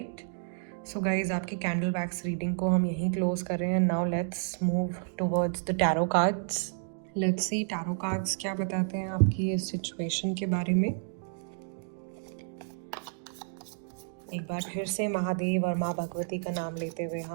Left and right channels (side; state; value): left; silent; digital silence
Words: सो गाइज आपकी कैंडल वैक्स रीडिंग को हम यहीं क्लोज कर रहे हैं। Now let's move towards the tarot cards. Let's see tarot cards क्या बताते हैं आपकी इस सिचुएशन के बारे में। एक बार फिर से महादेव और माँ भगवती का नाम लेते हुए